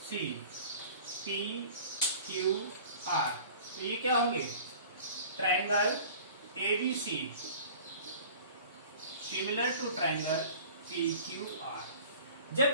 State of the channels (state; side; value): inverted; both; correlation -0.44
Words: C P Q R. तो ये क्या होंगे triangle A B C similar to triangle P Q R.